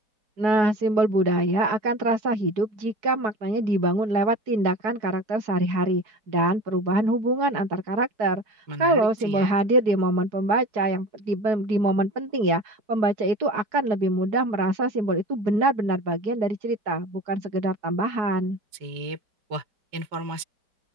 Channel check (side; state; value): left; late; 4.7 ms